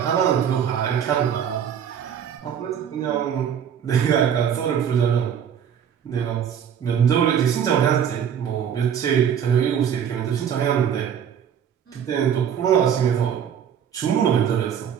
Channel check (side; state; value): left; quieter; 8.5 dB